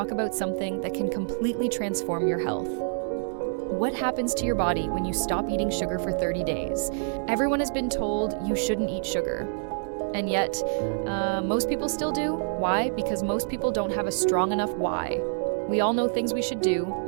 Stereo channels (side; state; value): left; silent; digital silence